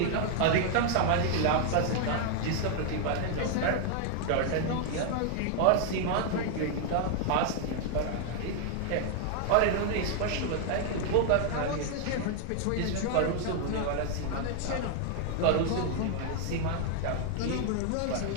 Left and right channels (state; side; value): different; both; correlation 0.00